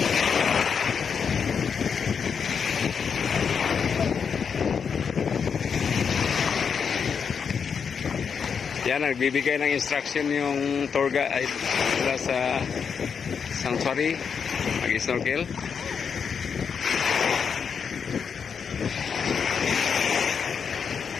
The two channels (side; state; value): right; quieter; 6.5 dB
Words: Yan, nagbibigay ng instruction yung tour guide mula sa sanctuary, mag-snorkel.